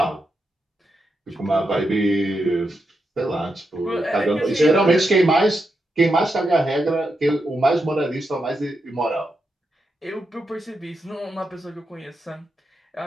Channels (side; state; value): both; normal; correlation 0.85